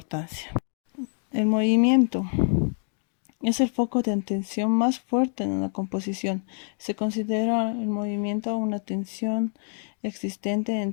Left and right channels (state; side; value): silent; right; digital silence